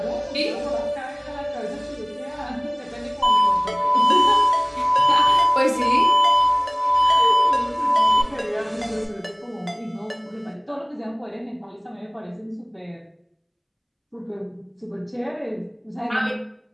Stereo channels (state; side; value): identical; both; correlation 1.00